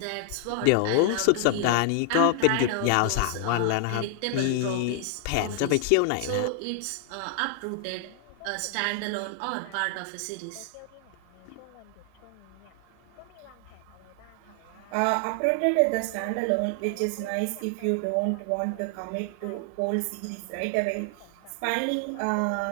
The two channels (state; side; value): different; both; correlation 0.00